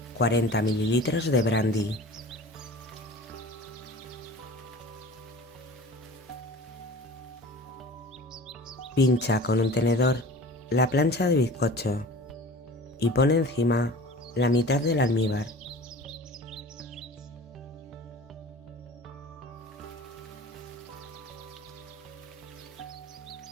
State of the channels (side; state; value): both; normal; correlation 0.40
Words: 40 mililitros de brandy. Pincha con un tenedor la plancha de bizcocho y pone encima la mitad del almíbar.